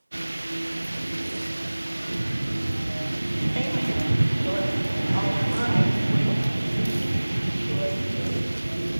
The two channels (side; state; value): both; inverted; correlation -1.00